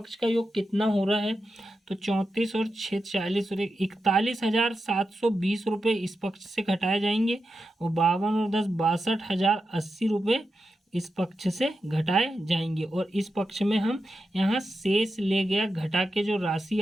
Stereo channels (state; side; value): normal; both; correlation 0.89